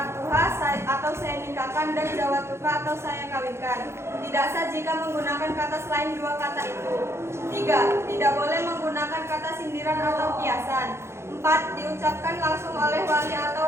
atau saya nikahkan dan zawatuka atau saya kawinkan. Tidak sah jika menggunakan kata selain 2 kata itu. 3. Tidak boleh menggunakan kata sindiran atau kiasan. 4. Diucapkan langsung oleh wali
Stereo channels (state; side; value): late; left; 0.13 ms